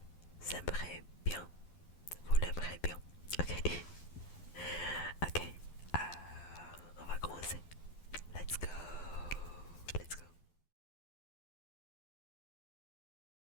aimerez bien. Vous l'aimerez bien. Ok. Ok. On va commencer. Let's go. Let's go.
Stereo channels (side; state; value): right; late; 12 ms